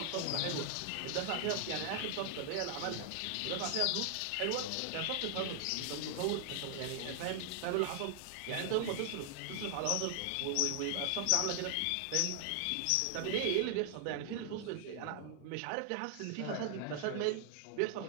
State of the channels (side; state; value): both; different; correlation 0.00